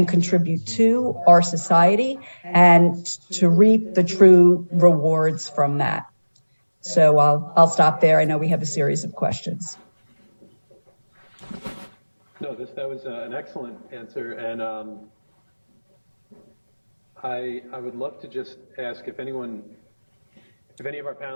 contribute to our society and to reap the true rewards from that. So I'll stop there. I know we have a series of questions. No, that was an excellent answer, and I would love to just ask if any of our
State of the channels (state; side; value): inverted; both; correlation -1.00